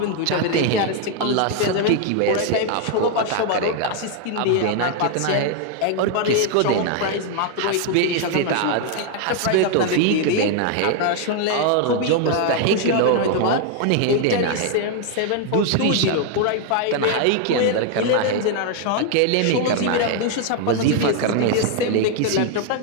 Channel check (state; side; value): different; both; correlation 0.00